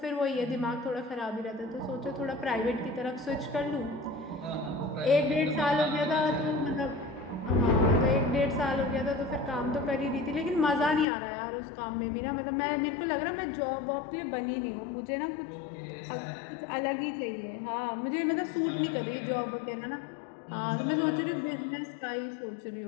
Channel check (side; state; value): right; drops out; at 11.1 s